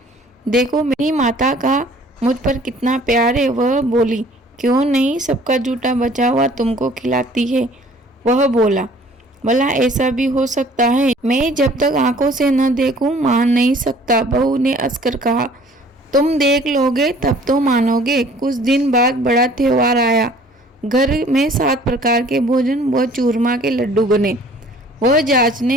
देखो मेरी माता का मुझ पर कितना प्यार है। वह बोली, क्यों नहीं, सबका जूठा बचा हुआ तुमको खिलाती है। वह बोला, भला ऐसा भी हो सकता है? मैं जब तक आंखों से न देखूं मान नहीं सकता। बहू ने हंसकर कहा, तुम देख लोगे तब तो मानोगे। कुछ दिन बाद बड़ा त्योहार आया। घर में 7 प्रकार के भोजन व चूरमा के लड्डू बने। वह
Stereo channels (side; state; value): both; normal; correlation 0.53